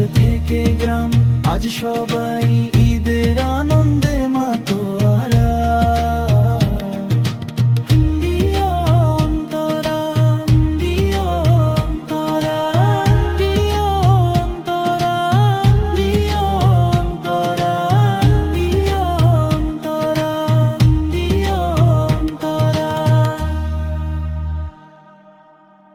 থেকে গ্রাম আজ সবাই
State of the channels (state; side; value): identical; both; correlation 1.00